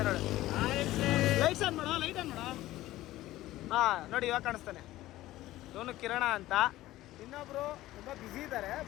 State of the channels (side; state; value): right; quieter; 16.0 dB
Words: ನೋಡಿ. ಲೈಟ್ಸ್ ಆನ್ ಮಾಡೋ, ಲೈಟ್ ಆನ್ ಮಾಡೋ. ಹಾಂ ನೋಡಿ, ಇವಾಗ ಕಾಣಿಸ್ತಾನೆ. ಇವನು ಕಿರಣ ಅಂತ. ಇನ್ನೊಬ್ರು ತುಂಬ ಬ್ಯುಸಿ ಇದ್ದಾರೆ,